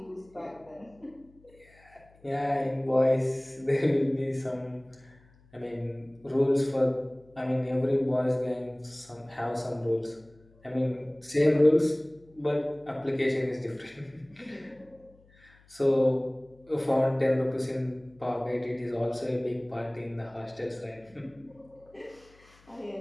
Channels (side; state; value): left; noise; hum, 28 dB below the sound